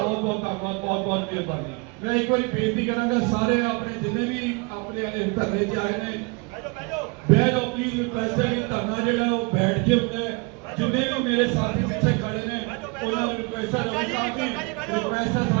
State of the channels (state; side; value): quieter; left; 29.2 dB